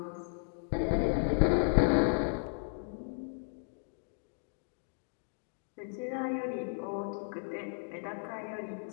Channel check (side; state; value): right; silent; digital silence